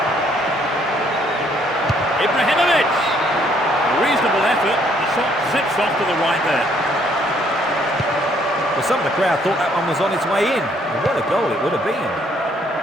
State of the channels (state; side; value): normal; both; correlation 0.66